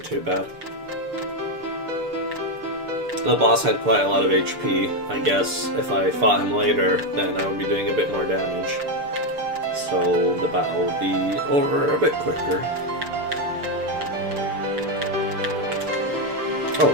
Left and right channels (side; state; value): left; late; 6.8 ms